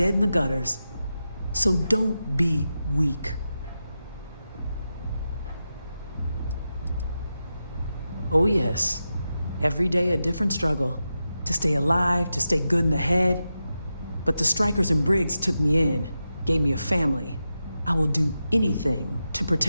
in the gutters. So don't be weak. Oh yes, every day a different struggle. To stay alive, to stay good in the head. But the Strikers and Briggs took me in, gave me a family. I will do anything to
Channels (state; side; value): inverted; both; correlation -0.90